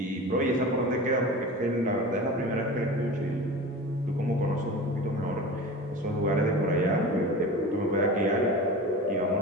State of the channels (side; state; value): both; normal; correlation 0.33